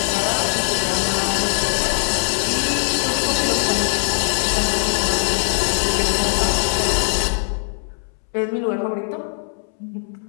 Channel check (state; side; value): silent; right; 65 dB below the other